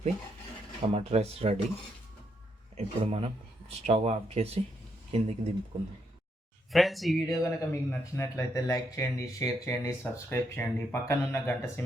టమాటా రైస్ రెడీ. ఇప్పుడు మనం స్టవ్ ఆఫ్ చేసి కిందికి దింపుకుందాం. ఫ్రెండ్స్, ఈ వీడియో కనుక మీకు నచ్చినట్లయితే లైక్ చేయండి, షేర్ చేయండి, సబ్స్క్రైబ్ చేయండి. పక్కనున్న గంట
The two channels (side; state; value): both; normal; correlation 0.77